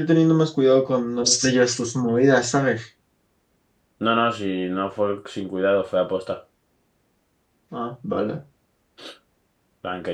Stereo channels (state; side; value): identical; both; correlation 1.00